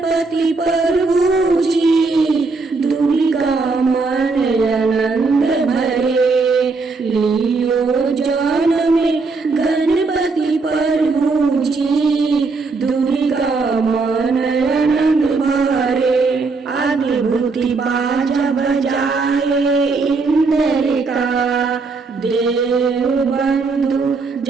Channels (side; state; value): left; quieter; 4.1 dB